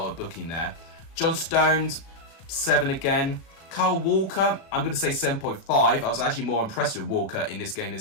a booking there. John Stones, 7 again. Carl Walker, I'm going to say 7.5. I was actually more impressed with Walker in this game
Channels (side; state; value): right; late; 36 ms